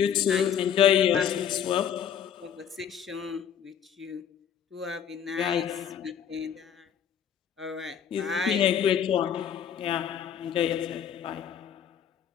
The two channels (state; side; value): quieter; right; 8.6 dB